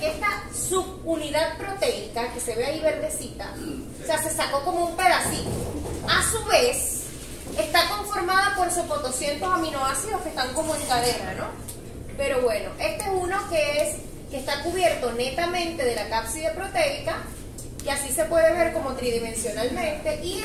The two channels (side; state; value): both; identical; correlation 1.00